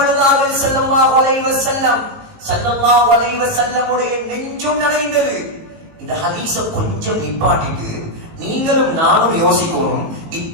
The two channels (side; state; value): left; late; 18 ms